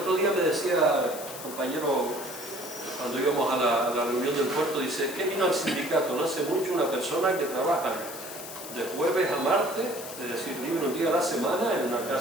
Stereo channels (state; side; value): noise; left; hiss, 11 dB below the sound